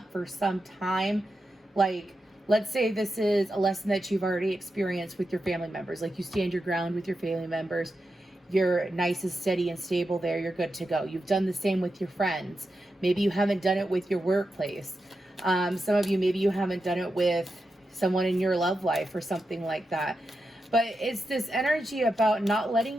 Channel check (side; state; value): both; normal; correlation 0.88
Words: for some time. Like Let's say this is a lesson that you've already experienced with your family members. Like you stand your ground with your family members. You're nice and steady and stable there. You're good to go. You've done the same with your friends. Maybe you haven't done it with your workplace. Some of you, maybe you haven't done it with someone in your love life or something like that. But it's this energy about not